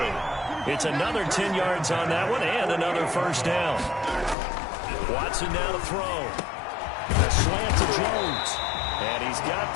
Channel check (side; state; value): right; drops out; at 4.4 s